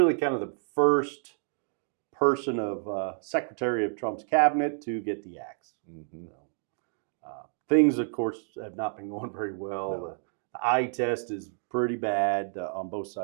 kind of the first person of Secretary of Trump's cabinet to get the axe. Things, of course, have not been going very well. No. The eye test is pretty bad on both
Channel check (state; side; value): silent; left; 58 dB below the other